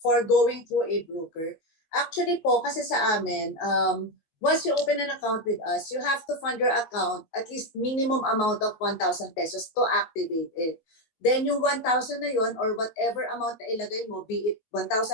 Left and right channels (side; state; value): right; late; 19 ms